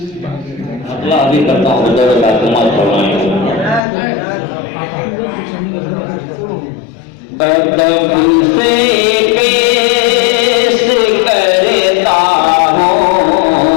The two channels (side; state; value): right; drops out; at 3.8 s